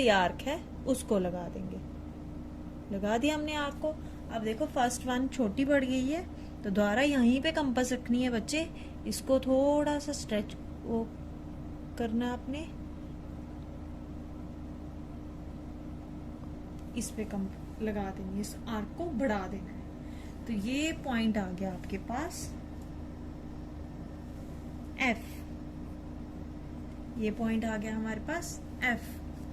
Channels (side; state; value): both; identical; correlation 1.00